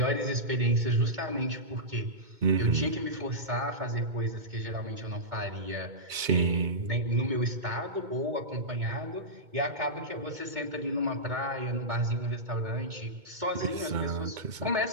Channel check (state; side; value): late; left; 2.2 ms